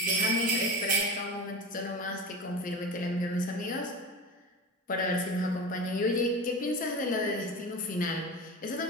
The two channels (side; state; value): both; normal; correlation 0.29